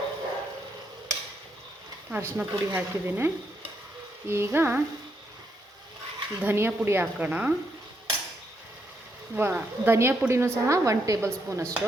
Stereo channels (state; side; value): normal; both; correlation 0.78